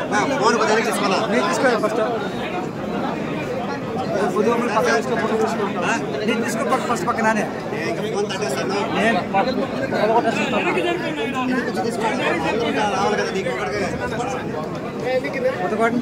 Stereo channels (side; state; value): both; identical; correlation 1.00